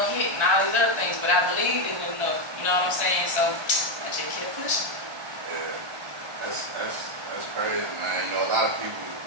all these other things, but I believed in it enough. You know what I'm saying? So I just kept pushing. Yeah, that's crazy, man. You know, a lot of people.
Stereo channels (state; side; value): late; left; 1.3 ms